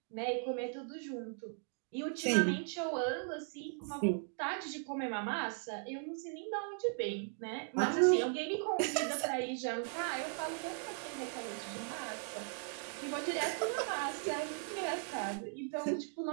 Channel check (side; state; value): left; silent; 52 dB below the other